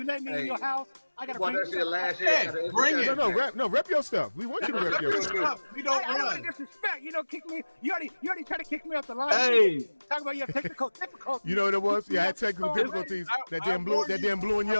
let me in your house. I gotta Boy, bring that's your last Hey, year. bring it. No, rep your stuff. We want you to rep your stuff. We don't I don't run. want to disrespect. You don't kick me. You already tried to kick me off the line. Hey. Talk about your technical difficulties. You know what it was? Yeah, I had technical difficulties. That damn blue and I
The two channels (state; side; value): inverted; both; correlation -1.00